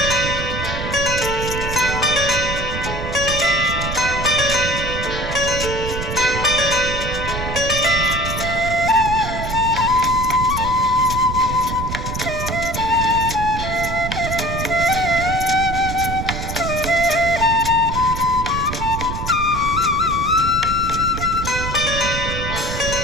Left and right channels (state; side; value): noise; right; rumble, 5 dB below the sound